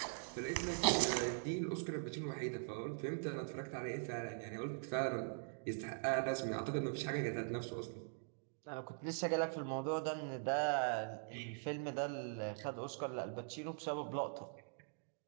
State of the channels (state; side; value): silent; left; digital silence